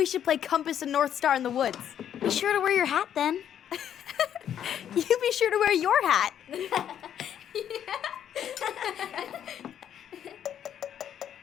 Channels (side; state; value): right; quieter; 9.7 dB